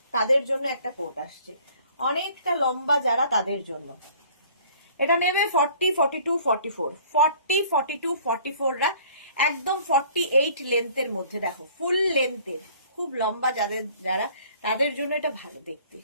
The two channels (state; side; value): inverted; both; correlation -0.54